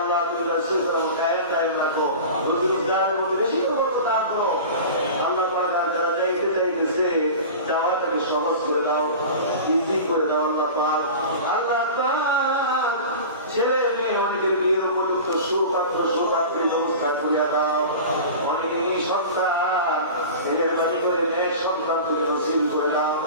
তুমি রাসূল কায়েম দায়েম রাখো, রোজগারের মধ্যে বেশি করতে দান করো। আল্লাহ পাক যারা যাইতেছে যাওয়াটাকে সহজ করে দাও, ইজি করে দাও। আল্লাহ পাক ছেলে মেয়ে অনেকের বিয়ের উপযুক্ত সুপাত্রের ব্যবস্থা করিয়া দাও। অনেকে এই সন্তান ছেলের বাড়ি করে মেয়ের সন্তান তুমি নসিব করে দাও।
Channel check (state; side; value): inverted; both; correlation -0.34